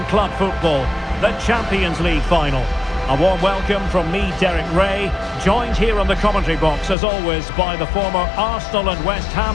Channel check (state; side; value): drops out; right; at 7.0 s